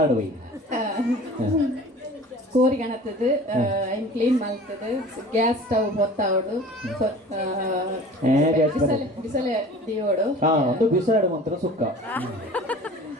ಹೋಯ್ ಕೋರಿಗಣತದು ಐನ್ ಕ್ಲೀನ್ ಮಾಡ್ತದು ಗ್ಯಾಸ್ ಸ್ಟವ್ ಹೊತ್ತಾವಡು ಬಿಸಲೆ ದಿಯೋಡು ಒಂದು ಬಿಸಾಡು ಮಂತ್ರ ಸುಕ್ಕ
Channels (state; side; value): normal; both; correlation 0.43